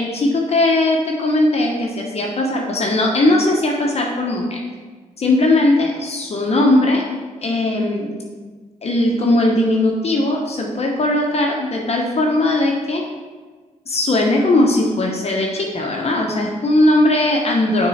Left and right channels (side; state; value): both; normal; correlation 0.64